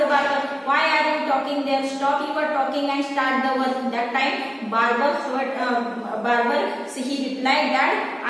barber, why are you talking there, stop your talking and start the work. That time barber so he replied that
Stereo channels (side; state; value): both; identical; correlation 1.00